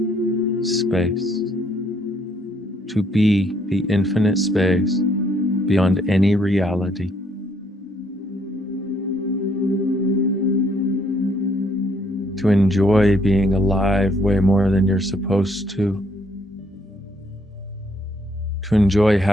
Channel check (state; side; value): normal; both; correlation 0.68